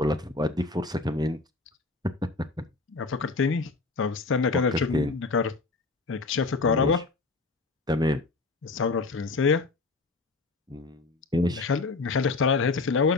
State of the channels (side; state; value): right; quieter; 3.7 dB